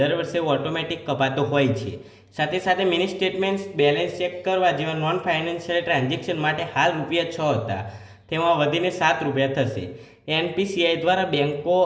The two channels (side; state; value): both; identical; correlation 1.00